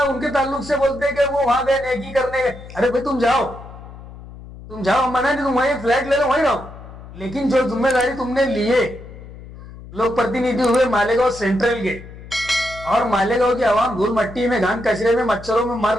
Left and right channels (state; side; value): noise; left; hum, 16 dB below the sound